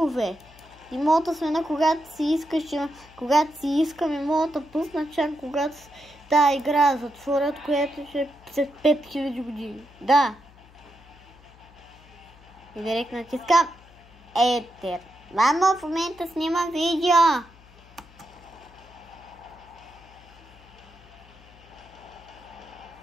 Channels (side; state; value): left; noise; hum, 24 dB below the sound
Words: И мога да сменя когато си искаш. Когато си искам и мога да пусна чак когато тази игра затворят, която ще е след 5000 години. Да. И директно натискам Етер. Мама в момента снима видео.